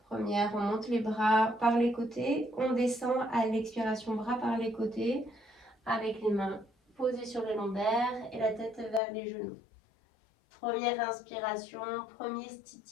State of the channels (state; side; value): drops out; right; at 9.0 s